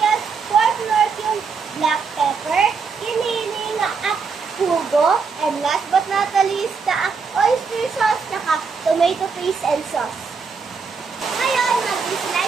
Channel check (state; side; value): quieter; left; 5.3 dB